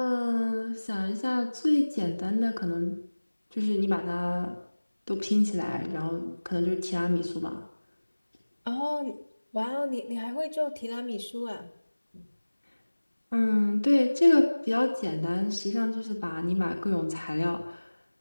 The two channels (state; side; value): inverted; both; correlation -1.00